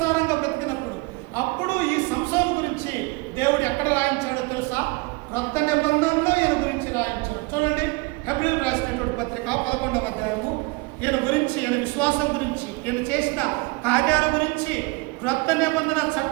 బ్రతికినప్పుడు. అప్పుడు ఈ సంసోను గురించి దేవుడు ఎక్కడ రాయించాడో తెలుసా? క్రొత్త నిబంధనలో ఈయన గురించి రాయించాడు. చూడండి, హెబ్రీయులకు రాసినటువంటి పత్రిక 11వ అధ్యాయము ఈయన గురించి, ఈయన విశ్వాసం గురించి, ఈయన చేసిన కార్యాల గురించి క్రొత్త నిబంధన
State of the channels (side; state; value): left; quieter; 25.6 dB